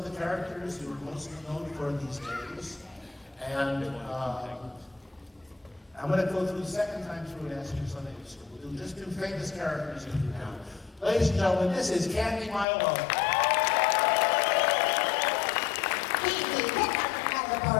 the characters who are most known for these days. And I'm going to go through the second time through and ask you something. We'll do just two famous characters in here now. Ladies and gentlemen, this is Candi, Milo.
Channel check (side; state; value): right; drops out; at 12.7 s